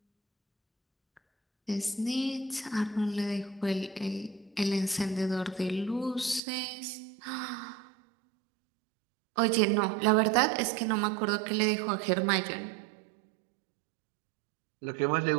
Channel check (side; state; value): left; drops out; at 6.4 s